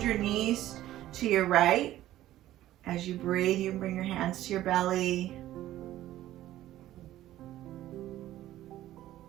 your knees to your right. As you breathe, you bring your hands to your belly.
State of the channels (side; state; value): left; quieter; 14.1 dB